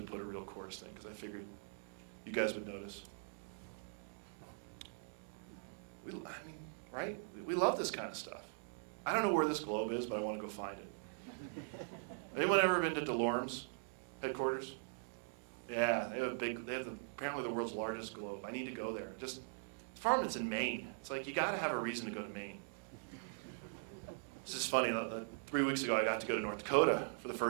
put a real Coors thing because I figured you guys would notice. I mean, right? We love this kind of stuff. I don't know where this globe is, but I want to go find it. Anyone ever been to DeLorme's headquarters? Yeah, they have apparently the world's largest globe. I need to go there. Just farm, it's in Maine. It's like you got to have a reason to go to Maine. This is funny. 3 weeks ago, I got to go to North Dakota for the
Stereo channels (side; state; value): left; silent; digital silence